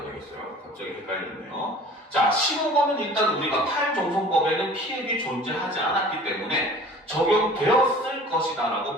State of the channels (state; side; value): normal; both; correlation 0.46